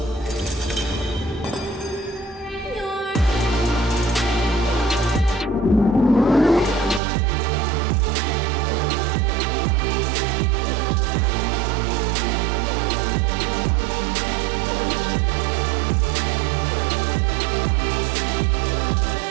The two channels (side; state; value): left; drops out; at 7.0 s